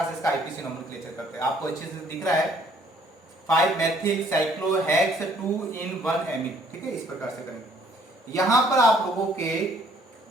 से इसका आईपीसी नोमेनक्लेचर करते हैं। आपको अच्छे से दिख रहा है 5 मेथिल साइक्लोहेक्स 2 in 1 एमीन। ठीक है, इस प्रकार से करेंगे। यहां पर आप लोगों के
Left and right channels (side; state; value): both; normal; correlation 0.61